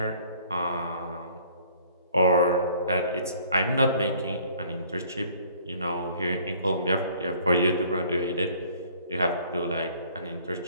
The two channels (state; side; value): inverted; both; correlation -0.56